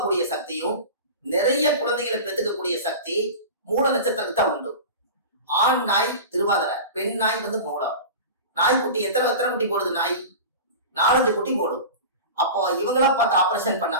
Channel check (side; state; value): both; inverted; correlation -0.32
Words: சக்தியும் நிறைய குழந்தைகளை பெற்றுக்கக்கூடிய சக்தி மூல நட்சத்திரத்துக்கு தான் உண்டு. ஆண் நாய் திருவாதிரை, பெண் நாய் மூலம். நாய்க்குட்டி எத்தனை குட்டி போடுது? நாய் 4-5 குட்டி போடும். அப்போ இவங்களா பார்த்து ஆபரேஷன் பண்ணா